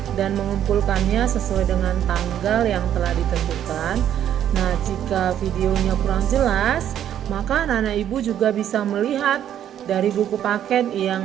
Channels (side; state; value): left; quieter; 10.4 dB